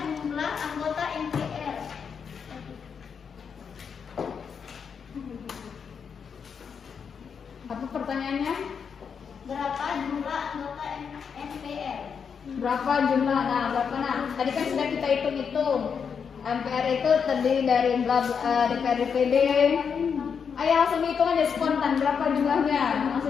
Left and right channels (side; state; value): right; quieter; 6.6 dB